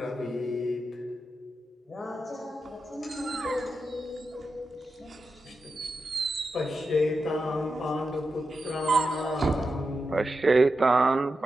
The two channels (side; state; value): both; normal; correlation 0.90